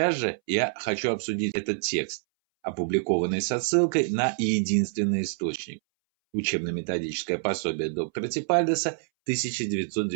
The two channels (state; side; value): silent; left; 60 dB below the other